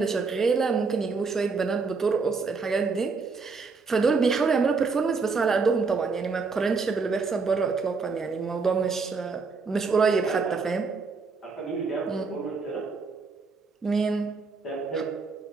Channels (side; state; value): left; quieter; 4.7 dB